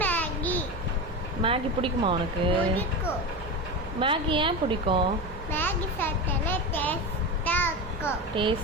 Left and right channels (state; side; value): normal; both; correlation 0.22